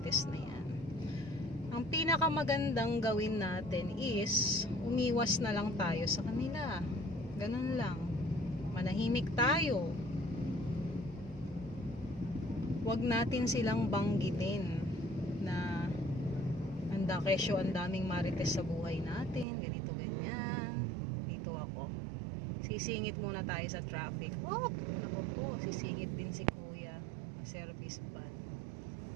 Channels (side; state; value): left; drops out; at 19.5 s